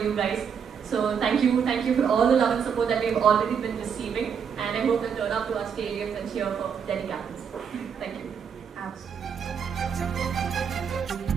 you guys. So thank you for all the love and support that we've already been receiving, and I hope you'll turn up to our stadiums and cheer for Delhi Capitals. Thank you.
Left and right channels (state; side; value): quieter; left; 7.1 dB